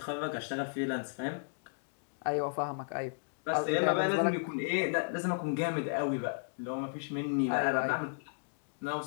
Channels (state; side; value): silent; right; digital silence